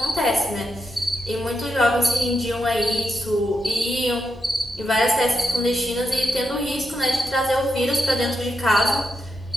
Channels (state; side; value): normal; both; correlation 0.84